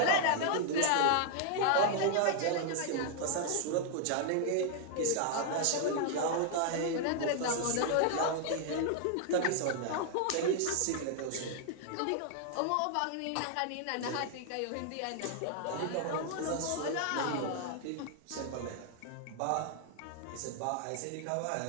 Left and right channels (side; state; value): both; different; correlation 0.00